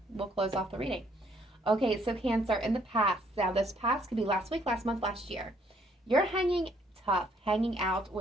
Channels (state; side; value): normal; both; correlation 0.66